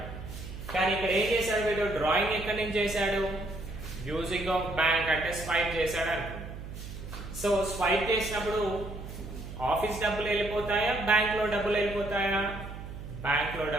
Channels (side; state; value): right; noise; hum, 10 dB below the sound